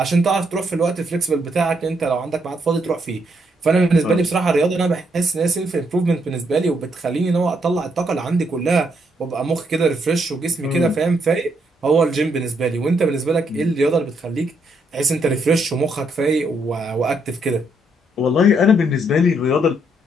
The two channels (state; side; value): normal; both; correlation 0.75